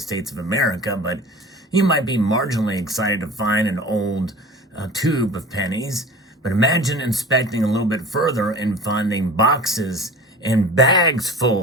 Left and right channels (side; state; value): both; normal; correlation 0.39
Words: of America, but you might be marginally excited to find an old tube of pennies. But imagine inspecting a little bit further and finding boxes and bags